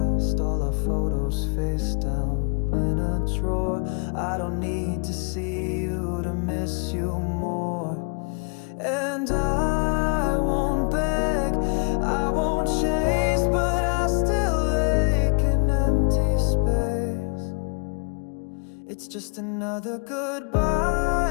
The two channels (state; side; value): quieter; right; 38.9 dB